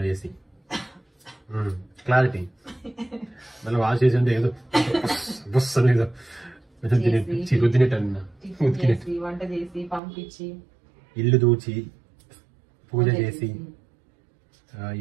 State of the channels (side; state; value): left; drops out; at 10.0 s